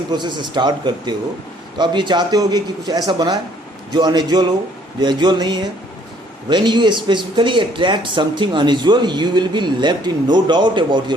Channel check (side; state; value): both; normal; correlation 0.61